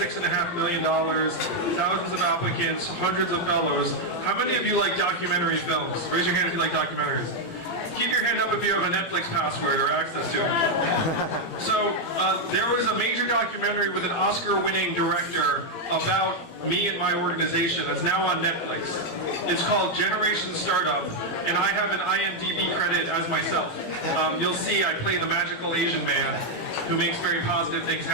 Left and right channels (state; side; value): late; right; 17 ms